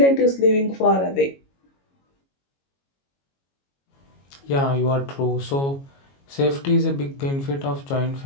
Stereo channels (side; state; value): right; late; 22 ms